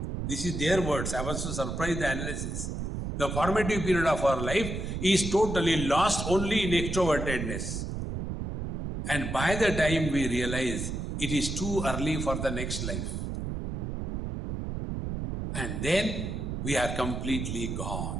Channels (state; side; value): noise; right; rumble, 4 dB below the sound